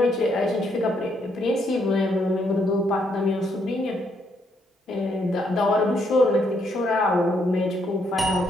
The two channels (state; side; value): normal; both; correlation 0.74